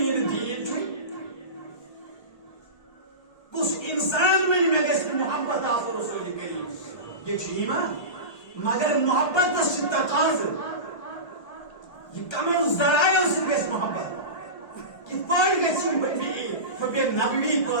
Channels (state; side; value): late; right; 1.3 ms